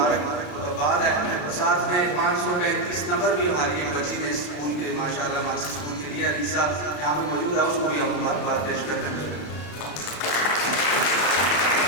ہے۔ ساتھ میں 535 نمبر بھی ہماری ایک بچی نے اسکول کے ماشاءاللہ مارکس اسکول کے لیے، علی صاحب یہاں پہ موجود ہے، اس کو بھی ہم مبارکباد پیش کرتے ہیں۔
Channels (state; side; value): late; right; 34 ms